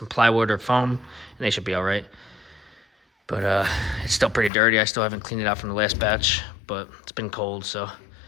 plywood or foam, and they should be all right. But it's still pretty dirty. I still haven't cleaned it out from the last batch, but it's been cold, so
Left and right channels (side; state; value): right; drops out; at 4.5 s